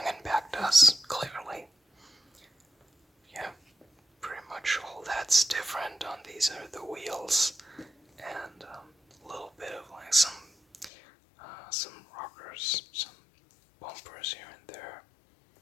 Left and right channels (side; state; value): right; drops out; at 10.9 s